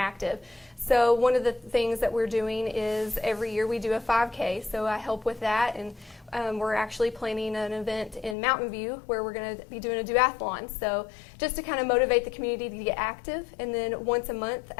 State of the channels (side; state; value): right; drops out; at 8.3 s